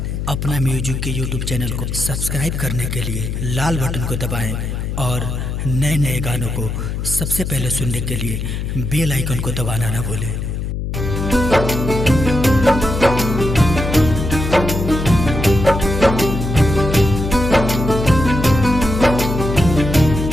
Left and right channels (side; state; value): left; noise; hum, 4 dB below the sound